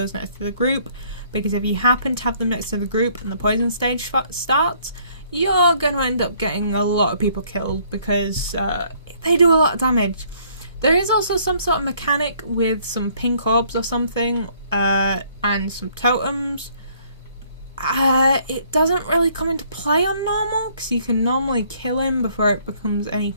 next to the group, because if you happen to have them next to the group and the poison stage starts, you're going to end up getting a lot of people killed, because they do a lot of damage. There is also some sort of mechanic with some pink orbs or something, and some totems. It doesn't really come into play on normal, because you can normally kill him before it becomes any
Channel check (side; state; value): both; inverted; correlation -0.63